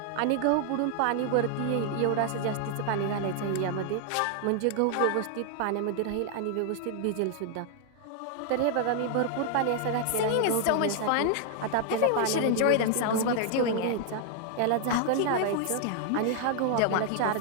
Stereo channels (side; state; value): both; different; correlation 0.00